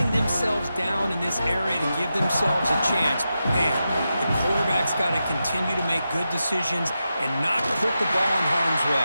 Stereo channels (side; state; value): both; inverted; correlation -0.89